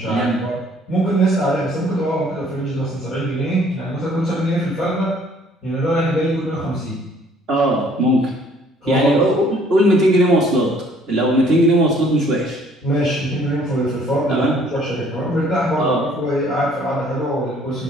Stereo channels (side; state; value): both; normal; correlation 0.59